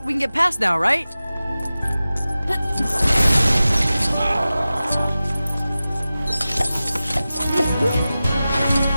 We can get past now, right? Can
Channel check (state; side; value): inverted; both; correlation -0.95